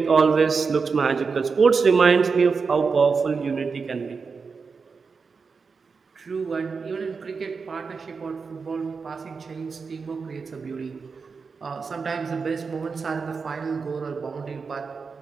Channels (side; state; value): left; quieter; 5.0 dB